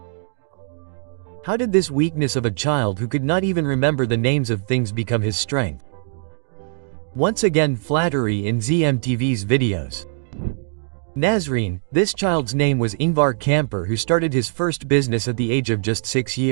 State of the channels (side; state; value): left; silent; digital silence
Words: How did this weakness of a child who could not even remember the names of things become his strength? Once again, flattery in ZMTV's videos. Nazreen, this child's name was Ingvar Kamper, who started his first business at the age of just 6